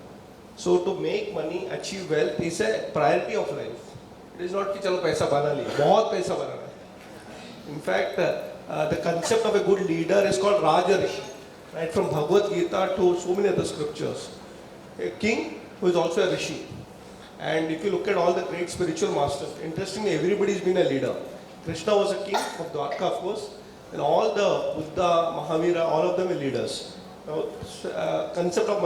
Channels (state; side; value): identical; both; correlation 1.00